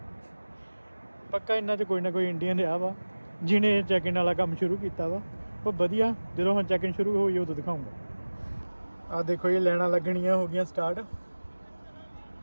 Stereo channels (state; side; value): inverted; both; correlation -1.00